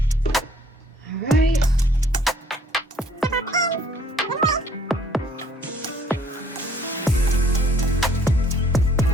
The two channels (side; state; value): both; normal; correlation 0.60